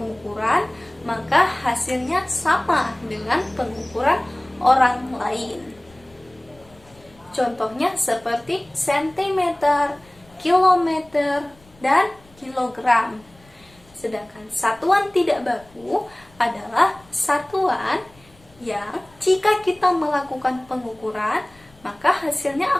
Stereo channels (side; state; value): left; noise; rumble, 28 dB below the sound